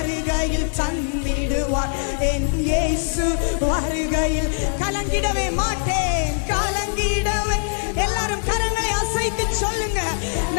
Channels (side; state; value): right; silent; digital silence